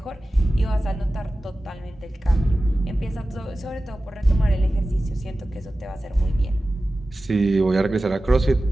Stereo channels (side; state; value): both; normal; correlation 0.95